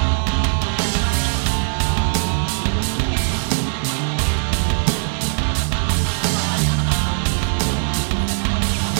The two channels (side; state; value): left; silent; digital silence